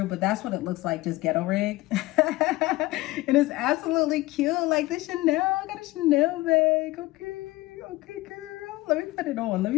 But that's what it looks like, just ghetto rigged. And it's absolutely cute. Like the Chanel, I got a Chanel bag. Okay, girl. Let me put it on. Let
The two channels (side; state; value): right; quieter; 19.7 dB